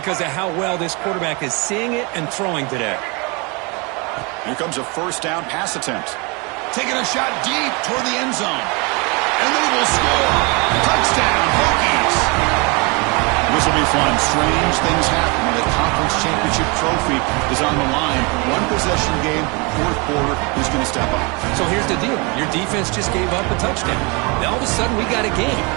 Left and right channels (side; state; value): left; quieter; 29.7 dB